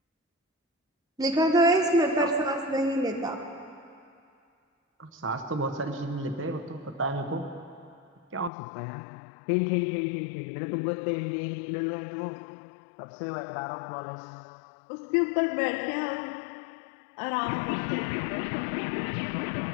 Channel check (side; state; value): right; drops out; at 8.5 s